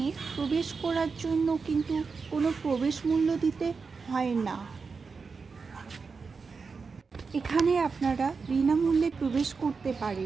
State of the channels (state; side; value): quieter; left; 4.9 dB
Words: প্রবেশ করার জন্য কিন্তু কোনো প্রবেশ মূল্য দিতে হয় না। এখানে আপনারা বিনামূল্যে প্রবেশ করতে